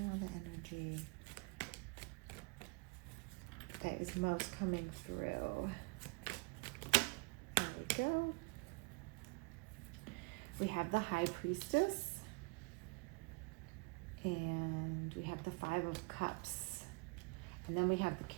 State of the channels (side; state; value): left; quieter; 29.5 dB